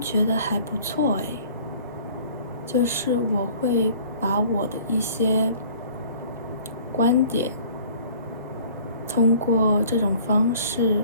觉得还不错诶。就是我会把我的一些观点通过这种方式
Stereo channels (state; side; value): inverted; both; correlation -0.50